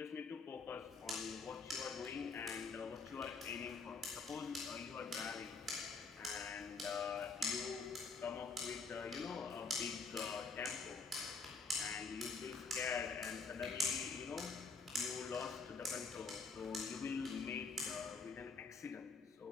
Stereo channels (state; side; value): quieter; right; 4.5 dB